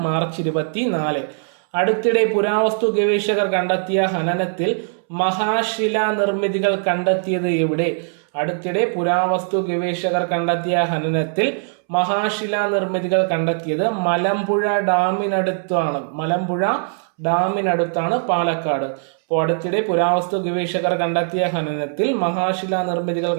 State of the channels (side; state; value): left; silent; 65 dB below the other